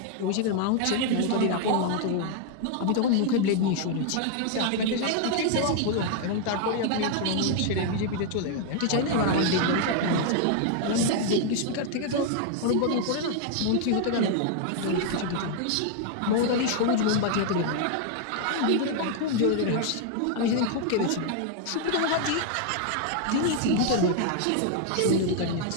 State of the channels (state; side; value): different; both; correlation 0.00